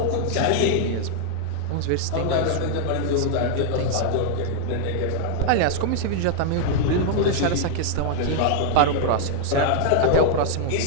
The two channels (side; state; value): both; different; correlation -0.01